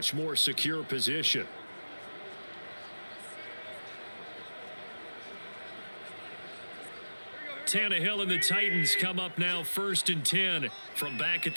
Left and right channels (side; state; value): both; inverted; correlation -1.00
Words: more secure position. Tannehill and the Titans come up now 1st and 10 from back at